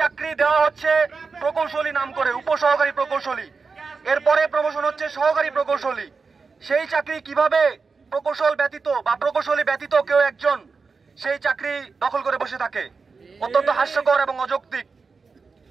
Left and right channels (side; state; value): left; quieter; 4.7 dB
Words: চাকরি দেওয়া হচ্ছে প্রকৌশলী নাম করে, উপসহকারী প্রকৌশলী, এরপরে প্রমোশন হচ্ছে সহকারী প্রকৌশলী, সেই চাকরি কিভাবে প্রকৌশল ব্যতীত বা প্রকৌশলী ব্যতীত কেউ একজন সেই চাকরি দখল করে বসে থাকে? অত্যন্ত হাস্যকর এবং অযৌক্তিক।